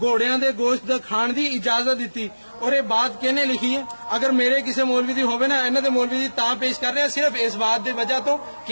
دے گوشت کھان دی اجازت دیتی اور یہ بات کہنے لکھی ہے اگر میرے کسی مولوی دی ہوے نا انہاں دے مولوی دی تاں پیش کر رہے ہیں صرف اس بات دی وجہ تو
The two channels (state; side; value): inverted; both; correlation -1.00